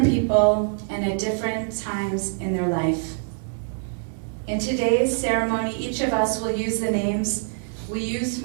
people, and at different times in their life. In today's ceremony, each of us will use the names we used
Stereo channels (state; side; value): silent; left; digital silence